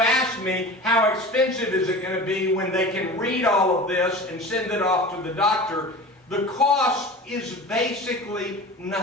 ask me how expensive is it going to be when they can read all of this and send it off to the doctor, the cost is basically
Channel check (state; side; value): normal; both; correlation 0.35